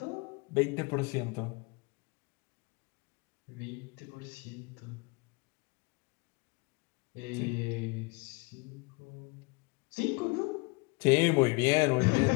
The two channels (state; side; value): quieter; right; 28.4 dB